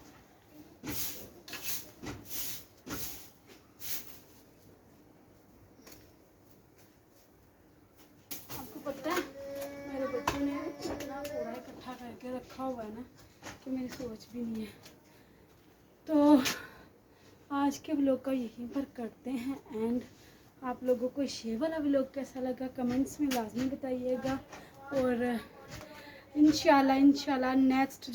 आपको पता है मेरे बच्चों ने इतना कूड़ा इकट्ठा करके रखा हुआ है ना कि मेरी सोच भी नहीं है। तो आज के व्लॉग का यहीं पर करते हैं एंड। आप लोगों को ये वाला व्लॉग कैसा लगा कमेंट्स में लाजमी बताइएगा। और इंशाल्लाह नेक्स्ट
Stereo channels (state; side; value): identical; both; correlation 1.00